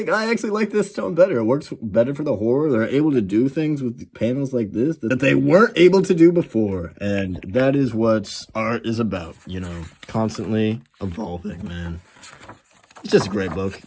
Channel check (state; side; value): identical; both; correlation 1.00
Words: I actually like this tone better. It works better for the horror. They're able to do things with panels like this that they weren't able to do before. And that is what art is about, you know, constantly evolving, man. It's just a great book.